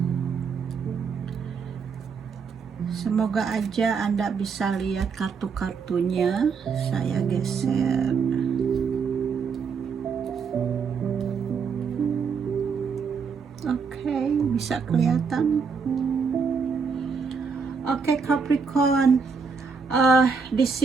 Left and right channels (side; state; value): left; quieter; 5.5 dB